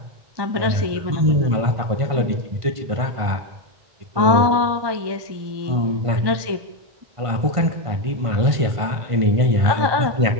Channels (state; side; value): late; left; 1.2 ms